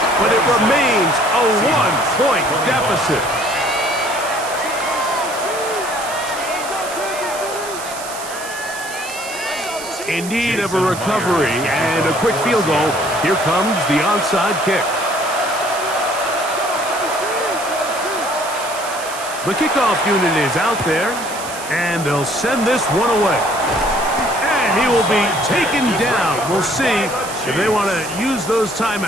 but it remains a 1-point deficit. In need of a recovery and a quick field goal. Here comes the onside kick. The kickoff unit is out there, and they'll send this one away. And he will be taken down. We'll see if they want to use those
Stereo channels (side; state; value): right; noise; hiss, 11 dB below the sound